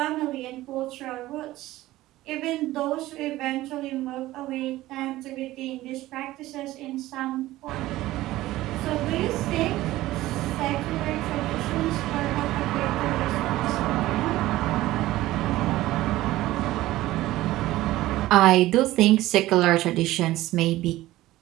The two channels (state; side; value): quieter; left; 16.5 dB